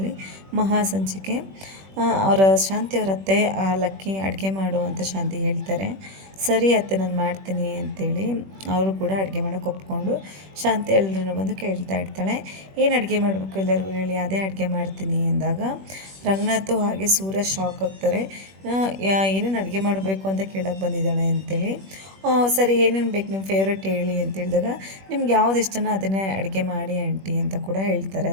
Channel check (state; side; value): late; left; 21 ms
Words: ಮಹಾಸಂಚಿಕೆ. ಅವರ ಶಾಂತಿ ಅವರ ಅತ್ತೆ ಲಕ್ಕಿ ಅಡುಗೆ ಮಾಡು ಅಂತ ಶಾಂತಿ ಹೇಳ್ತಾರೆ. ಸರಿ ಅತ್ತೆ ನಾನು ಮಾಡ್ತೀನಿ ಅಂತೇಳಿ ಅವರು ಕೂಡ ಅಡುಗೆ ಮಾಡೋಕ್ಕೆ ಒಪ್ಕೊಂಡು ಶಾಂತಿ ಎಲ್ಲರೂ ಬಂದು ಕೇಳ್ತಾ ಇರ್ತಾಳೆ, ಏನು ಅಡುಗೆ ಮಾಡಬೇಕು ಎಲ್ಲರಿಗೂ ಹೇಳಿ, ಅದೇ ಅಡುಗೆ ಮಾಡ್ತೀನಿ ಅಂದಾಗ ರಂಗನಾಥು ಹಾಗೆ ಸೂರ್ಯ ಶಾಕ್ ಆಗ್ತಾರೆ. ಏನೇನು ಅಡುಗೆ ಮಾಡಬೇಕು ಅಂತ ಕೇಳೋಕ್ಕೆ ಬಂದಿದ್ದಾಳೆ ಅಂತೇಳಿ. ಸರಿ ಏನೇನು ಬೇಕು ನಿಮ್ಮ ಫೇವ್ರೆಟ್ ಹೇಳಿ ಅಂತ ಹೇಳಿದಾಗ, ನಿಮ್ಗೆ ಯಾವ್ದು ಇಷ್ಟನೋ ಅದನ್ನೇ ಅಡುಗೆ ಮಾಡಿ ಆಂಟಿ ಅಂತ ಕೂಡ ಹೇಳ್ತಾರೆ